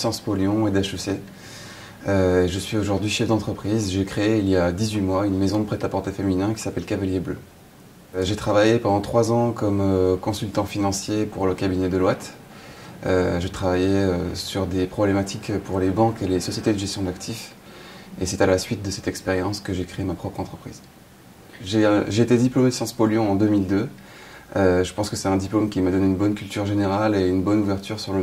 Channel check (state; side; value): identical; both; correlation 1.00